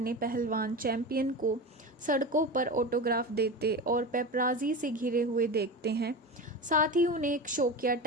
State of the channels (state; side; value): normal; both; correlation 0.26